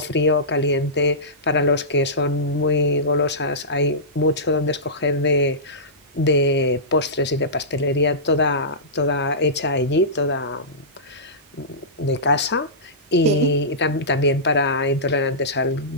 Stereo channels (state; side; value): normal; both; correlation -0.19